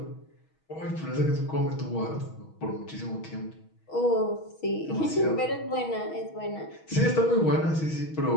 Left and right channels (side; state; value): right; late; 6.3 ms